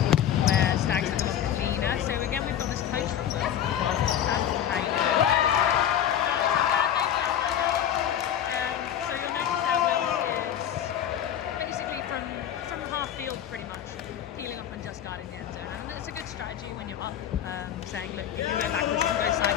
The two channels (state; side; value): quieter; right; 10.1 dB